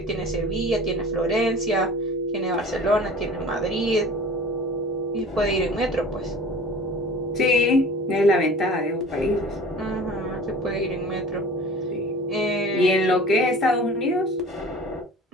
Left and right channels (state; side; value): normal; both; correlation 0.42